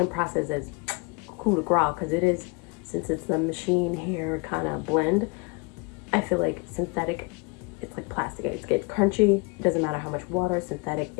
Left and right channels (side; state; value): right; quieter; 29.9 dB